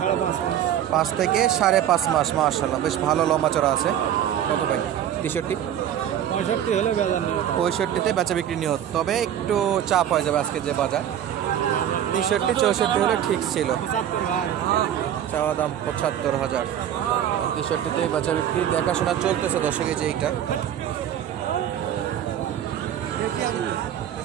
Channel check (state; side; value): quieter; left; 10.4 dB